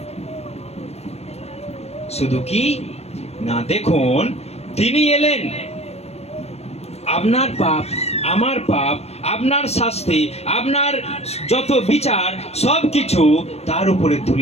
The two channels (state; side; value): late; right; 0.31 ms